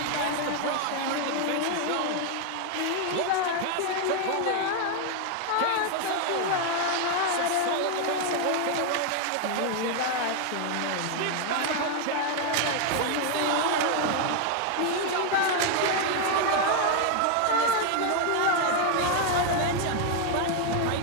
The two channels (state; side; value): different; both; correlation 0.01